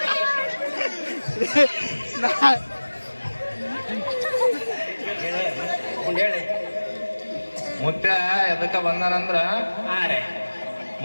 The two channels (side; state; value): both; inverted; correlation -1.00